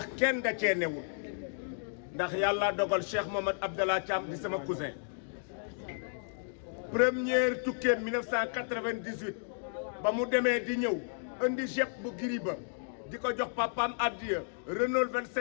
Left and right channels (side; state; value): right; silent; digital silence